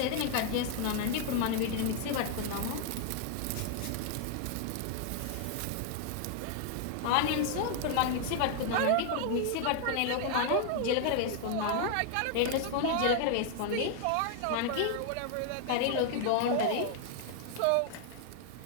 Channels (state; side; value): different; both; correlation 0.00